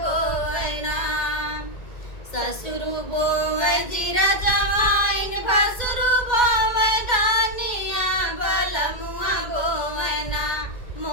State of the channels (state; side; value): late; right; 2.1 ms